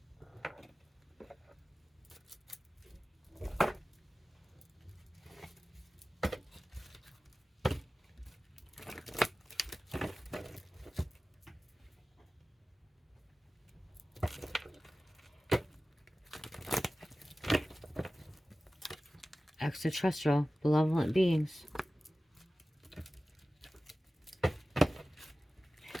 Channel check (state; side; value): normal; both; correlation 0.96